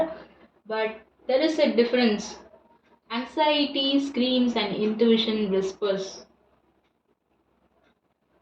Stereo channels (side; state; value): both; identical; correlation 1.00